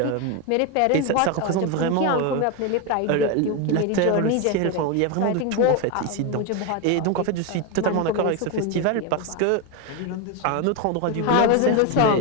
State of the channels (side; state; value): both; different; correlation 0.02